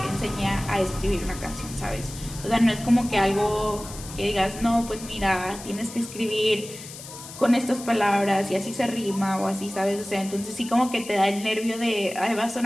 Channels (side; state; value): left; noise; hiss, 14 dB below the sound